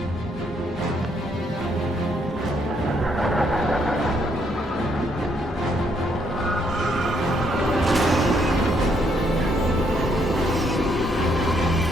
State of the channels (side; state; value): both; normal; correlation 0.72